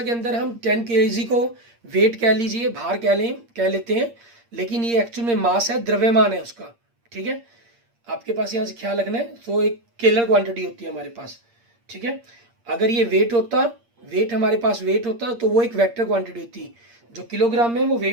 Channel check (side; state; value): left; late; 8.6 ms